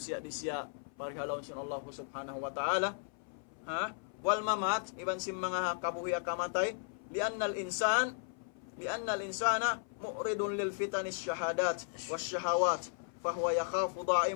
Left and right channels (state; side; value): silent; right; 54 dB below the other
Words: di siya pari halom sin Allah subhanahu wa ta'ala. Wal mamat iban sim mga kabuhi akamatay li'annal insana mu'ridun lil fitanis syahadat was syahawat fahuwa yakhafu